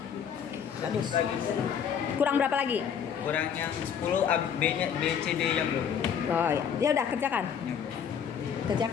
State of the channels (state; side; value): quieter; right; 7.9 dB